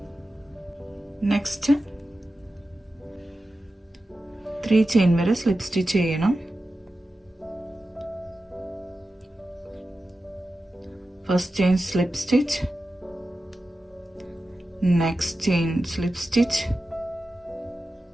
നെക്സ്റ്റ് 3 ചെയിൻ വരെ സ്ലിപ്പ് സ്റ്റിച്ച് ചെയ്യണം. First chain slip stitch, next chain slip stitch,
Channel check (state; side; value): normal; both; correlation 0.93